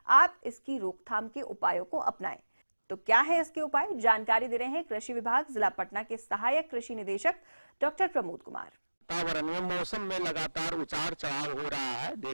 आप इसकी रोकथाम के उपायों को अपनाएं। तो क्या है इसके उपाय, जानकारी दे रहे हैं कृषि विभाग जिला पटना के सहायक कृषि निदेशक डॉक्टर प्रमोद कुमार। वातावरण में मौसम में लगातार उतार चढ़ाव हो रहा है।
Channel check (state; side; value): inverted; both; correlation -1.00